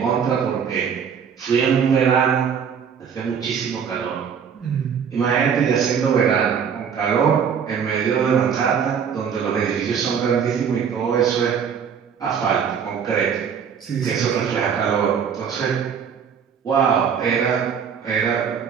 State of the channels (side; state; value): left; quieter; 7.3 dB